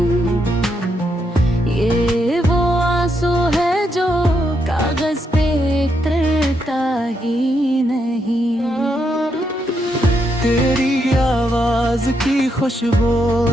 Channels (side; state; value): both; normal; correlation 0.79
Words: ये वो आंसू है जो कागज पे उतरता ही नहीं। तेरी आवाज की खुशबू